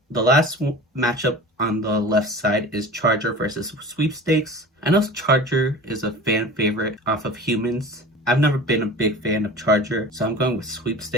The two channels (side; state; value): both; normal; correlation 0.37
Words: the last matchup on the left side is Charger versus Sweepstakes. I know Charger is a fan favorite off of Humans. I've never been a big fan of Charger, so I'm going with